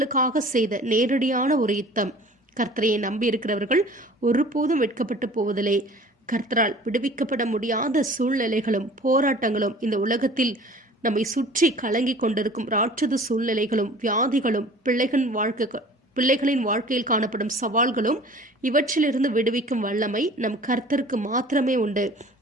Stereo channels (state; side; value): normal; both; correlation 0.46